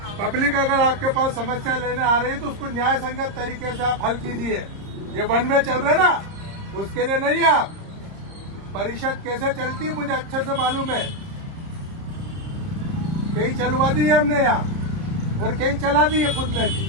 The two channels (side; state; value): left; late; 30 ms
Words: पब्लिक अगर आपके पास समस्या लेने आ रही है तो उसको न्याय संगत तरीके से आप हल कीजिए। ये वन वे चल रहे ना, उसके लिए नहीं। आप परिषद कैसे चलती है मुझे अच्छे से मालूम है। कई चलवा दी है हमने यहाँ और कई चला दी है खुद ने भी।